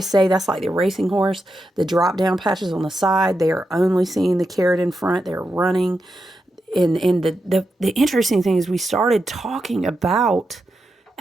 say that's like the racing horse, the drop down patches on the side. They are only seeing the carrot in front. They're running. And the interesting thing is we started talking about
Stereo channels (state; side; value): normal; both; correlation 0.87